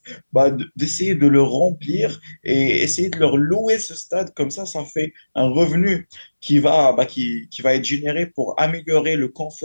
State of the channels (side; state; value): both; inverted; correlation -1.00